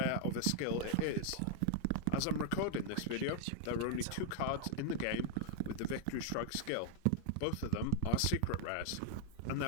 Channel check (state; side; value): different; both; correlation 0.00